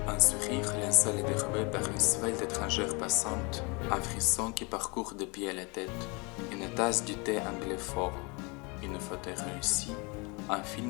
Un sourire linceul est dérobé par une svelte étrangère passante, un frisson qui parcourt de pied à la tête, une tasse du thé anglais fort, une photo réussie, un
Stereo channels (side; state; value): right; quieter; 29.3 dB